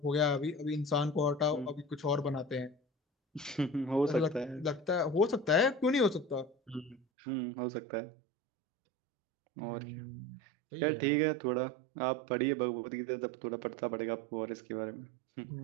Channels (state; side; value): drops out; left; at 7.0 s